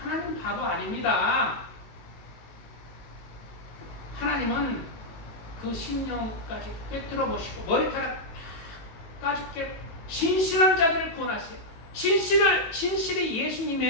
바보 아닙니다. 하나님은 그 심령까지 꿰뚫어 보시고 머리카락 까지 진실한 자들을 구원하세요. 진실이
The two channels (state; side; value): late; right; 18 ms